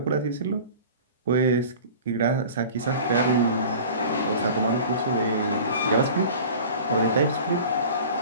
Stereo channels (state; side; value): inverted; both; correlation -0.40